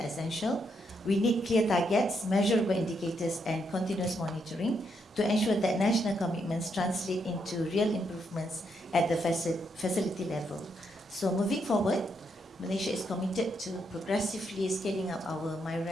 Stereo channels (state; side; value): normal; both; correlation 0.78